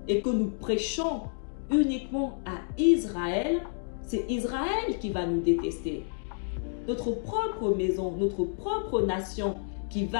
et que nous prêchons uniquement à Israël, c'est Israël qui va nous détester. Notre propre maison, notre propre nation qui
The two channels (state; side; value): silent; right; digital silence